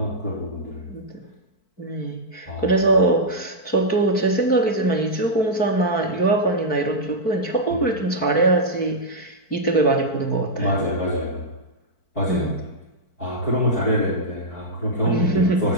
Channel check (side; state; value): right; late; 4.6 ms